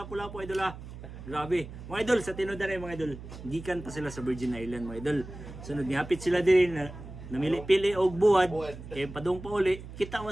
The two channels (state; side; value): noise; right; hum, 13 dB below the sound